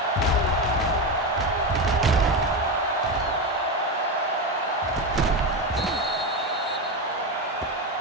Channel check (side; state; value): both; normal; correlation 0.15